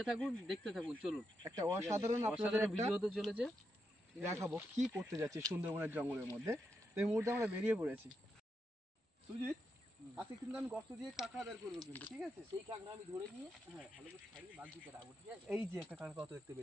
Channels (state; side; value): normal; both; correlation 0.84